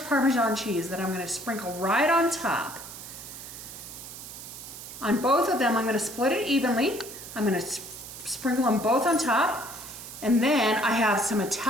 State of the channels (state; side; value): noise; right; hiss, 12 dB below the sound